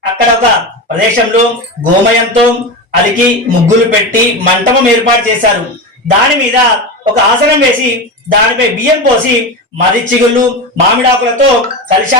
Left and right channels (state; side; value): normal; both; correlation 0.21